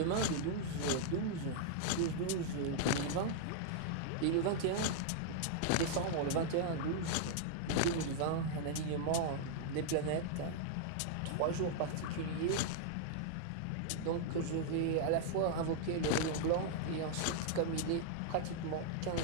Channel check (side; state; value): both; different; correlation -0.01